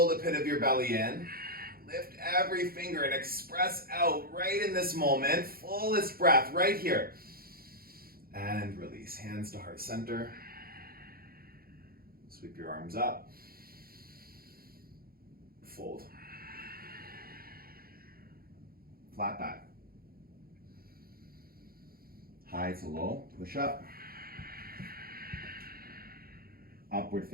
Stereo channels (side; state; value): left; late; 0.43 ms